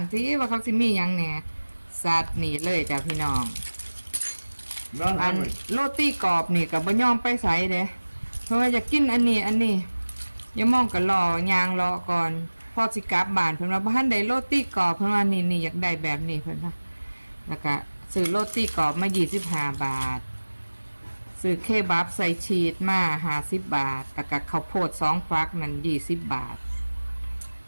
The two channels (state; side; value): inverted; both; correlation -1.00